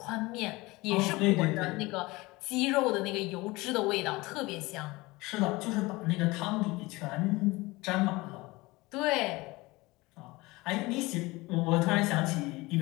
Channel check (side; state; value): right; quieter; 22.0 dB